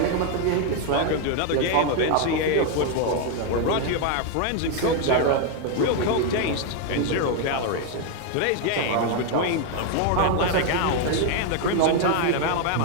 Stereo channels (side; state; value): both; different; correlation 0.01